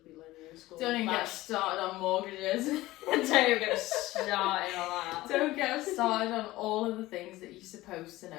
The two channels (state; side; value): quieter; right; 17.7 dB